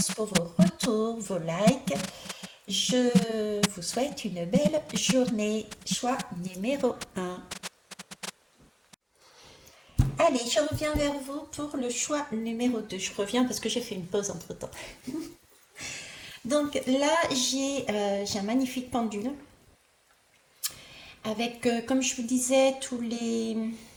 pour vos retours, vos likes. Je vous souhaite une belle journée. Choix numéro 1. Allez, je reviens vers vous pour le choix numéro 2. Je reviens parce que j'ai fait une pause entre-temps. Donc là, j'ai un magnifique pendule avec, comme je vous disais, tous les...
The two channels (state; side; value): identical; both; correlation 1.00